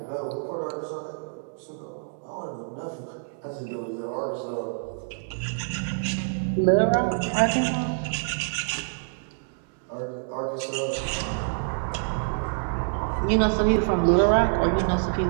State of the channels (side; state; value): left; silent; digital silence